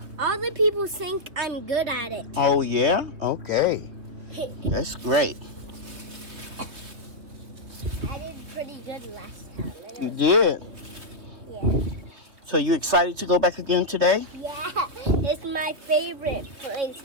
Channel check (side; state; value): left; late; 3.0 ms